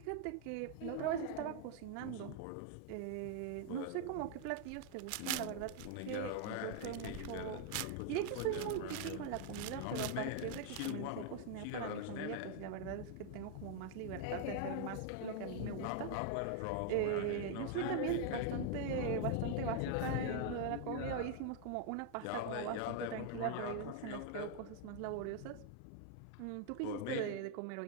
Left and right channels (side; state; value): both; different; correlation 0.00